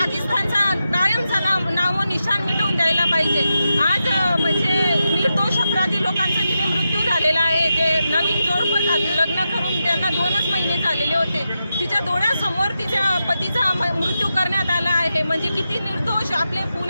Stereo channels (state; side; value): inverted; both; correlation -0.89